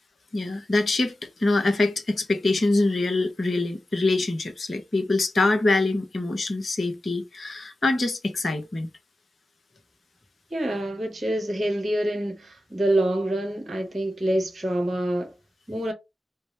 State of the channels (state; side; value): normal; both; correlation 0.93